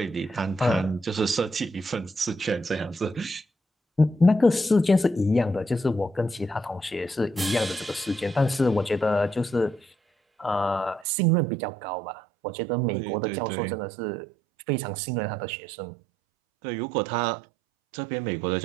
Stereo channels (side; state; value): left; drops out; at 11.1 s